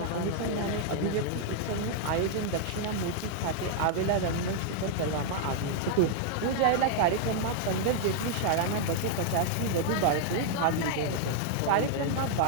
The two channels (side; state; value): both; different; correlation 0.00